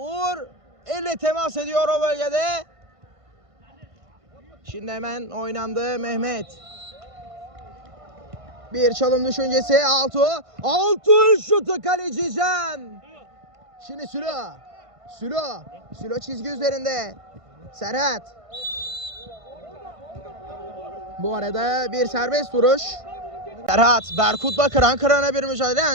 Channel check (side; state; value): left; late; 1.5 ms